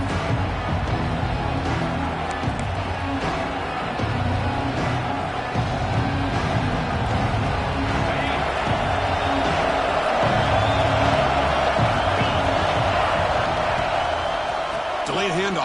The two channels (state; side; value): identical; both; correlation 1.00